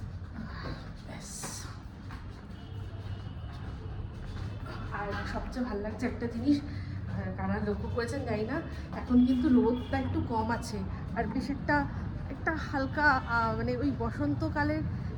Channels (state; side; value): identical; both; correlation 1.00